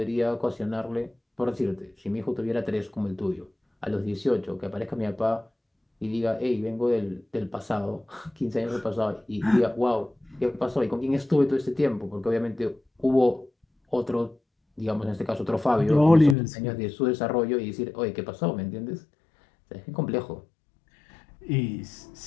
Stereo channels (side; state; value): right; drops out; at 16.4 s